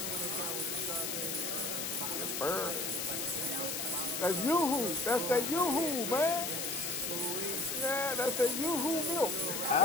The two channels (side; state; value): left; noise; hiss, 2 dB below the sound